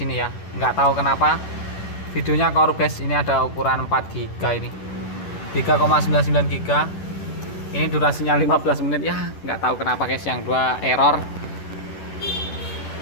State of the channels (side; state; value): right; late; 10 ms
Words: ya. Nggak tahu kenapa videonya korup guys. Ini ada ukuran 4 GB ini. 3,99 GB. Ini durasinya 15 menit ya. Nggak tahu kenapa guys, yang 2 error.